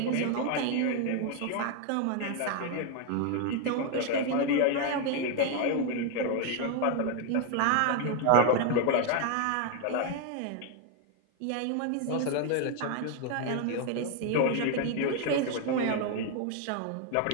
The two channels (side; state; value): both; different; correlation 0.01